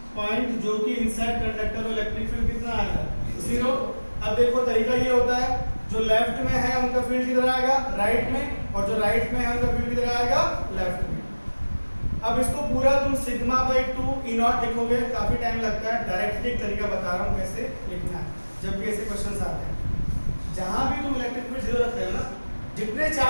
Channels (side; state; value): both; inverted; correlation -1.00